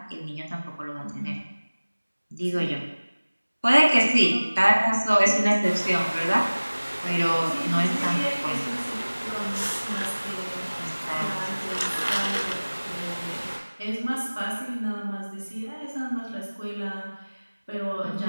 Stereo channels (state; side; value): inverted; both; correlation -1.00